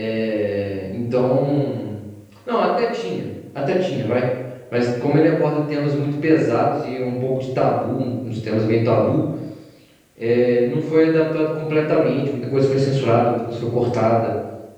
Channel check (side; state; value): both; identical; correlation 1.00